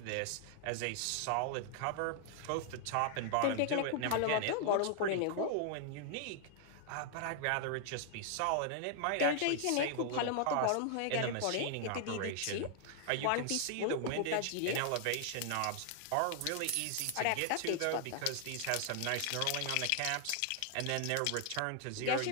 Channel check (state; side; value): different; both; correlation 0.00